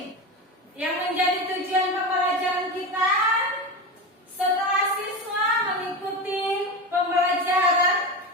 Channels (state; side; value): normal; both; correlation 0.21